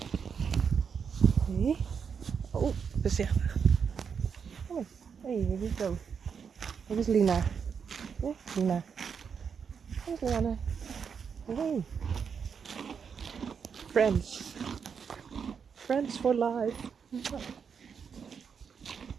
Hey. Oh, voorzichtig. Kom hey, wat is het? Dit is Lina. Ja, Lina. Dit is Lianne. Hey. Friends. Friends for life.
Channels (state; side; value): quieter; left; 6.6 dB